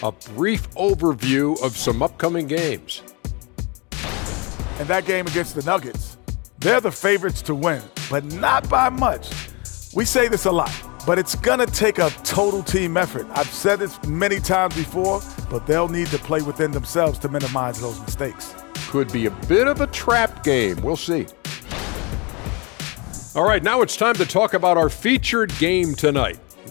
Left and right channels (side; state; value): right; quieter; 28.8 dB